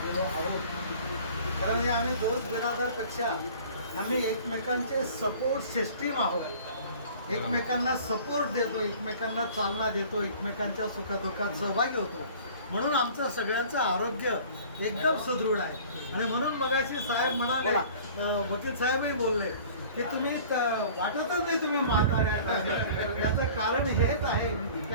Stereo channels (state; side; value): inverted; both; correlation -0.47